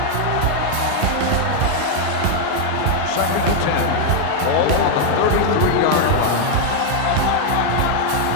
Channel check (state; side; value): different; both; correlation 0.00